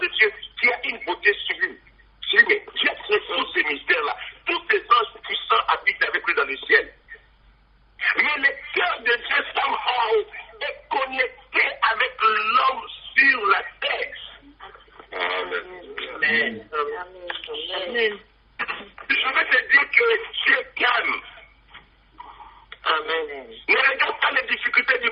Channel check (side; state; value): both; identical; correlation 1.00